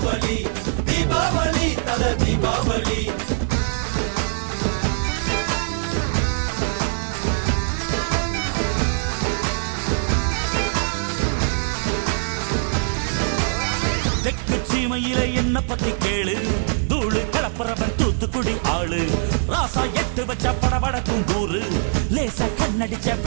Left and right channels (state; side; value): silent; left; digital silence